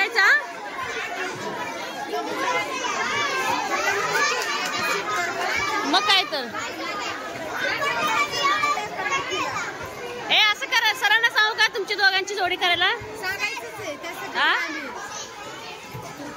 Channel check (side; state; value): both; identical; correlation 1.00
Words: मग काय तर असं करा. सरांना सांगू का तुमची दोघांची जोडी करायला?